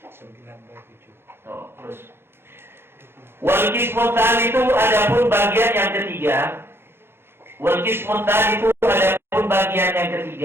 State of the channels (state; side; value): late; left; 0.11 ms